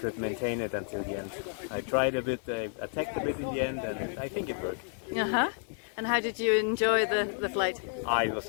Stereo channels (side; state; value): right; silent; 57 dB below the other